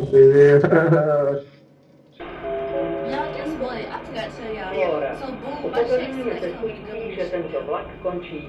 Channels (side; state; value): both; identical; correlation 1.00